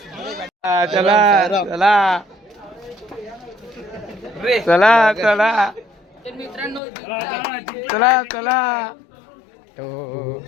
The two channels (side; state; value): right; drops out; at 6.8 s